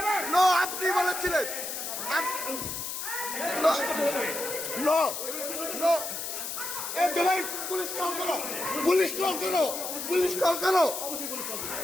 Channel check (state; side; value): noise; left; hiss, 5 dB below the sound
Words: নো, আপনি বলেছিলেন। নো নো, পুলিশ কল করো, পুলিশ কল করো, পুলিশ কল করো,